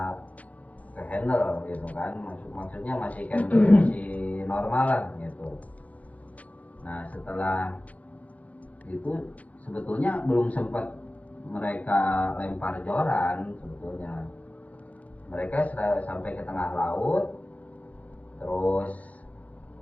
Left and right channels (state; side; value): late; right; 0.069 ms